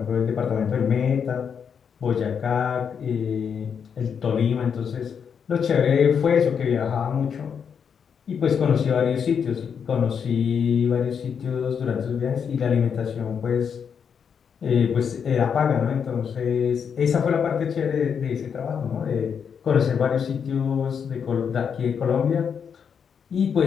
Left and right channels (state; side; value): quieter; right; 7.0 dB